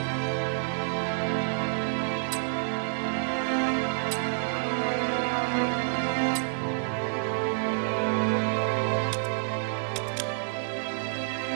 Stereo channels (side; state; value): left; silent; digital silence